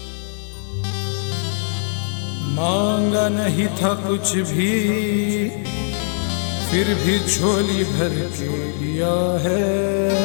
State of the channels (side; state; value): right; silent; 64 dB below the other